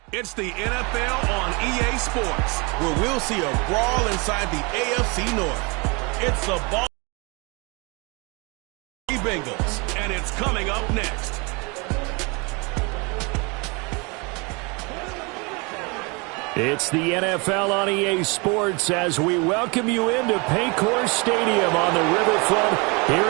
It's the NFL on EA Sports, where we'll see a brawl inside the AFC North. It's the Bengals, and it's coming up next. It's the NFL on EA Sports as we welcome you into Paycor Stadium on the riverfront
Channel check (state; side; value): quieter; left; 29.5 dB